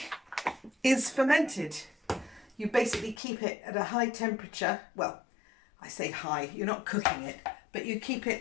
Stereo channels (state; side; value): drops out; right; at 3.2 s